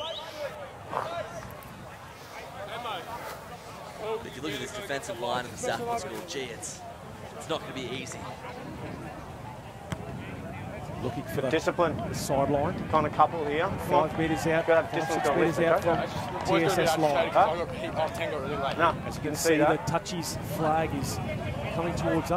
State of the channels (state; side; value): identical; both; correlation 1.00